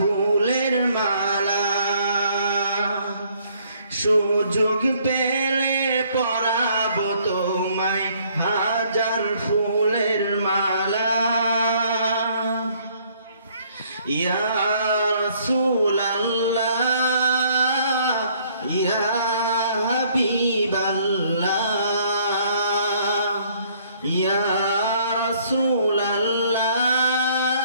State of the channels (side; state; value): both; inverted; correlation -0.63